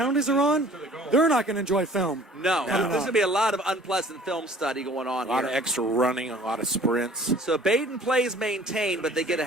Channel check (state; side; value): normal; both; correlation 0.51